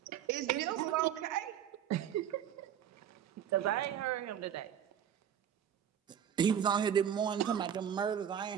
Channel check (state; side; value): quieter; left; 9.3 dB